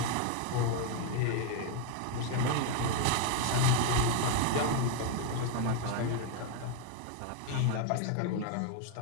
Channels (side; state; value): both; different; correlation 0.01